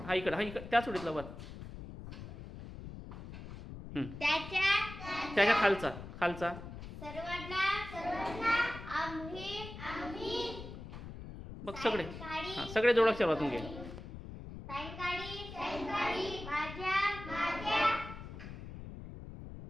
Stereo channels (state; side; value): noise; left; rumble, 11 dB below the sound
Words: हा इकडं त्याच ओळीतला वर. त्याच्या खालचा. सर्वांना आम्ही बघ सगळे. हां सगळे जोडाक्षर वाचून घे. सायंकाळी माझ्या